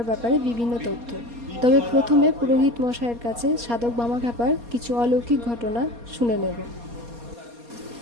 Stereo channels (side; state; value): left; late; 4.2 ms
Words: ব্যাপারে বিভিন্ন তথ্য। তবে প্রথমে পুরোহিত মশাইয়ের কাছে সাধক বামাখ্যাপার কিছু অলৌকিক ঘটনা শুনে নেব।